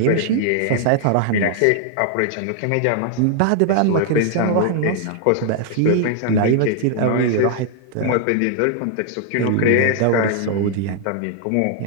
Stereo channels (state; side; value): different; both; correlation 0.00